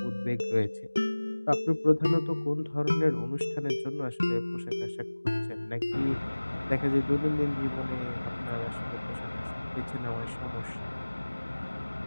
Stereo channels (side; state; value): both; inverted; correlation -1.00